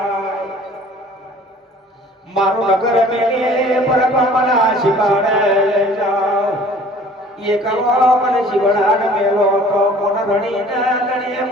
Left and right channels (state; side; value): normal; both; correlation 0.50